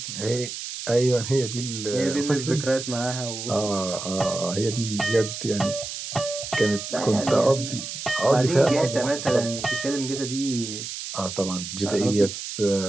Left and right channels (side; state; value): right; noise; hiss, 7 dB below the sound